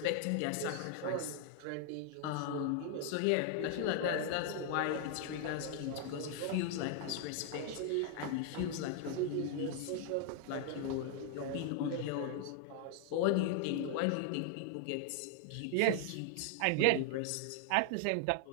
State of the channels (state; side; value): different; both; correlation 0.00